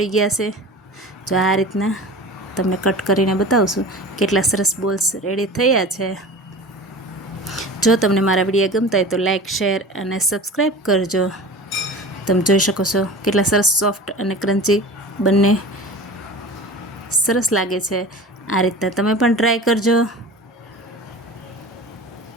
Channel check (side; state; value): both; normal; correlation 0.36